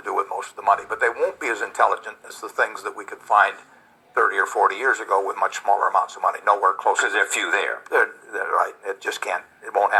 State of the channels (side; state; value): both; identical; correlation 1.00